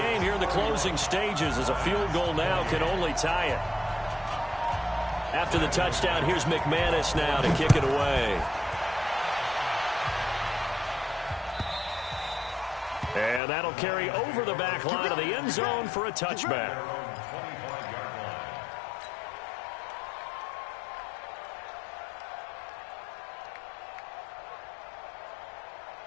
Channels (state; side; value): drops out; right; at 13.4 s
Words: here in the closing stages as a field goal now can only tie it. After the touchdown, here's McManus now to kick it away. And that'll carry over the back line of the end zone for a touchback.